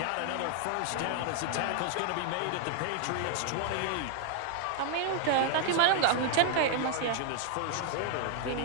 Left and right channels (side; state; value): both; different; correlation 0.00